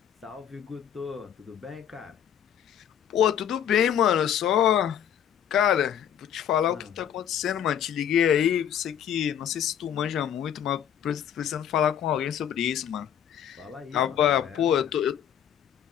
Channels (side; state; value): right; quieter; 9.5 dB